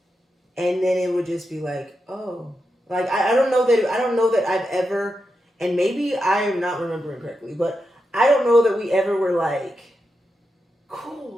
And then it would just be like, oh, like I don't know that I've ever, and maybe I am not remembering correctly, but I don't know that we ever were like,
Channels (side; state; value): both; normal; correlation 0.87